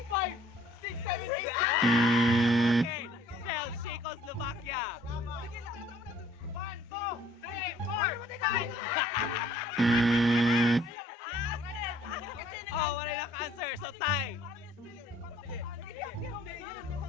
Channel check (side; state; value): both; normal; correlation 0.59